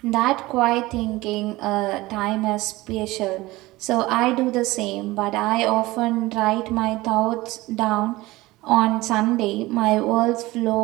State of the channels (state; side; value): quieter; left; 19.6 dB